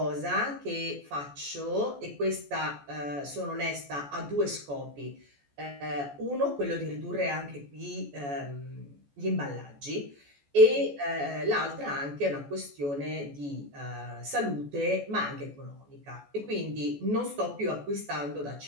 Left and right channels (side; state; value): left; late; 14 ms